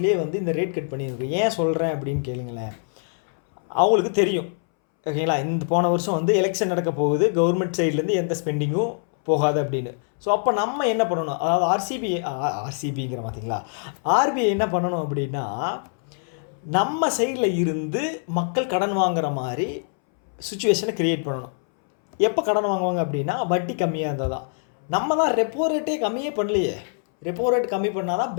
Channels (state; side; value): silent; right; 63 dB below the other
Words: வந்து இந்த ரேட் கட் பண்ணியிருக்கு. ஏன் சொல்கிறேன் அப்படின்னு கேளுங்களேன். அவங்களுக்கு தெரியும், ஓகேங்களா, இந்த போன வருஷம் வந்து எலெக்ஷன் நடக்க போகுது, கவர்மெண்ட் சைட்லேருந்து எந்த ஸ்பெண்டிங்கும் போகாது அப்படின்னு. ஸோ அப்போ நம்ம என்ன பண்ணணும், அதாவது ஆர்சிபிங்கிற பார்த்தீங்களா, ஆர்பிஐ என்ன பண்ணணும் அப்படின்னா, நம்ம சைடில் இருந்து மக்கள் கடன் வாங்குற மாதிரி சுச்சுவேஷனை க்ரியேட் பண்ணணும். எப்போ கடன் வாங்குவாங்க அப்படின்னா வட்டி கம்மியாக இருந்தால் தான். நம்ம தான் ரெப்போ ரேட்டே கம்மியே பண்ணலையே. ரெப்போ ரேட் கம்மி பண்ணால் தான்